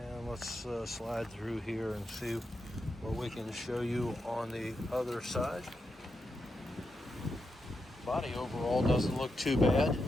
let's slide through here and see what we can show you on the other side. Body overall doesn't look too bad.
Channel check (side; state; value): both; normal; correlation 0.86